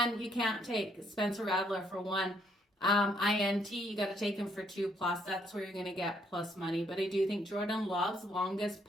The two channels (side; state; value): both; normal; correlation 0.70